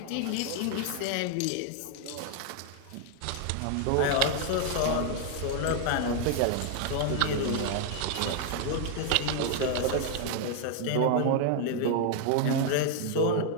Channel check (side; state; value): both; different; correlation 0.00